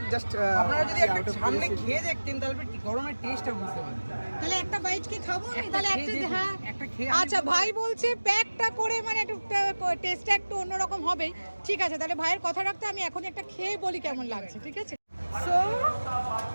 জাস্ট আপনারা যদি একটা সামনে খেয়ে দেখতেন তাহলে গরমের টেস্টটা বুঝতে পারতেন। তাহলে একটা বাইট কি খাবো আমি? তাহলে হ্যাঁ, একটা খেয়ে আচ্ছা, ভাই বলছে প্যাকটা করে মানে একটু টেস্টটা একটু অন্যরকম হবেই, ঠিক আছে? তাহলে ভাইয়ের কথা রাখতে আমি এখনই একটা খেয়ে বলি কেমন লাগছে, ঠিক আছে? সো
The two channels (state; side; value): inverted; both; correlation -1.00